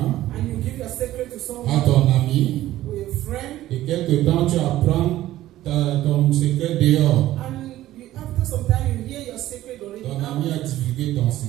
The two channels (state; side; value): quieter; left; 14.6 dB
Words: and you give your secret to à someone ton ami, or your friend, et quelque temps tu apprends ton secret dehors. and after some time you hear your secret already Ton ami a out. divulgué ton